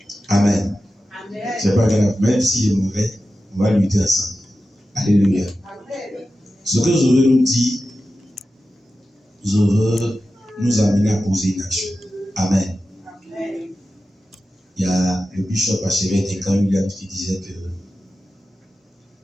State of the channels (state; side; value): normal; both; correlation 0.93